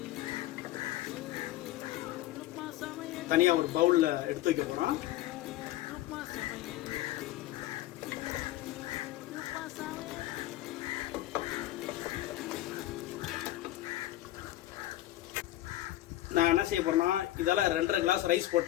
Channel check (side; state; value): right; quieter; 15.3 dB